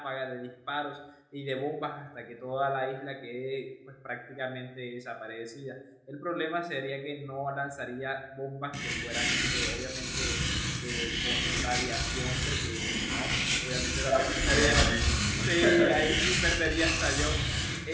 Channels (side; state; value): both; identical; correlation 1.00